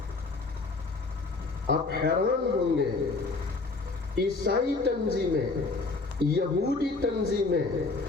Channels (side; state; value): right; quieter; 3.7 dB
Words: آپ حیران ہوں گے، عیسائی تنظیمیں، یہودی تنظیمیں